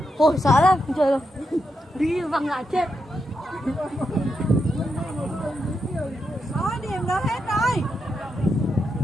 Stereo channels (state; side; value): normal; both; correlation 0.84